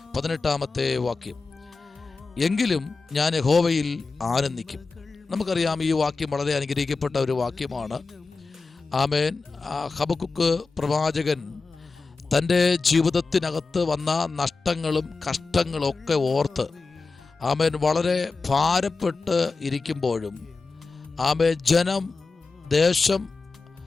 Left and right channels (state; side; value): quieter; right; 4.1 dB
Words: 18-ാമത്തെ വാക്യം. എങ്കിലും ഞാൻ യഹോവയിൽ ആനന്ദിക്കും. നമുക്കറിയാം, ഈ വാക്യം വളരെ അനുഗ്രഹിക്കപ്പെട്ട ഒരു വാക്യമാണ്. ആമേൻ. ഹബക്കുക്ക് പ്രവാചകൻ തൻ്റെ ജീവിതത്തിനകത്ത് വന്ന നഷ്ടങ്ങളും കഷ്ടങ്ങളും ഒക്കെ ഓർത്ത് ആമേൻ വളരെ ഭാരപ്പെട്ട് ഇരിക്കുമ്പോഴും ആമേൻ ജനം, ദേശം,